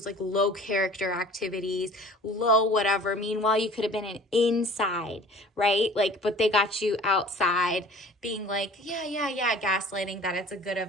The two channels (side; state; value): both; normal; correlation 0.47